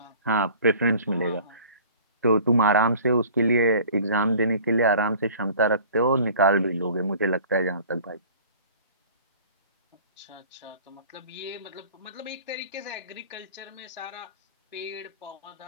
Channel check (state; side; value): inverted; both; correlation -0.47